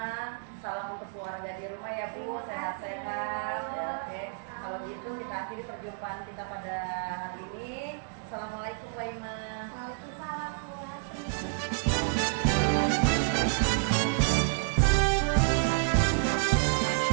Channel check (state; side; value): silent; left; digital silence